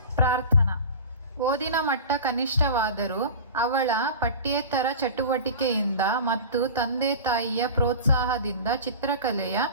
ಪ್ರಾರ್ಥನಾ. ಓದಿನ ಮಟ್ಟ ಕನಿಷ್ಠವಾದರೂ ಅವಳ ಪಠ್ಯೇತರ ಚಟುವಟಿಕೆಯಿಂದ ಮತ್ತು ತಂದೆ ತಾಯಿಯ ಪ್ರೋತ್ಸಾಹದಿಂದ ಚಿತ್ರಕಲೆಯ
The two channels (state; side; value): inverted; both; correlation -0.33